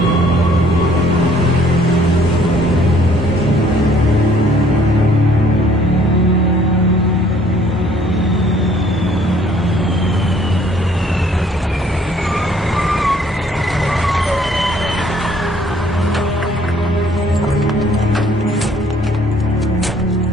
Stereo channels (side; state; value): both; normal; correlation 0.60